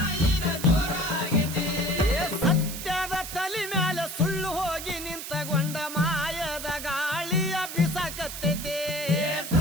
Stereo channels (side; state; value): right; noise; hiss, 8 dB below the sound